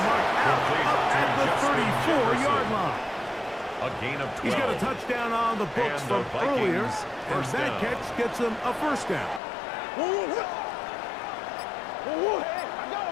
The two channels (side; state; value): right; drops out; at 9.4 s